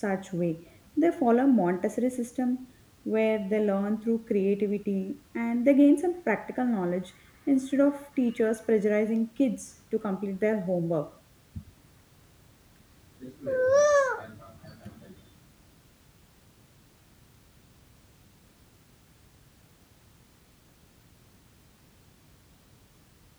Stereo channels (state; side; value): identical; both; correlation 1.00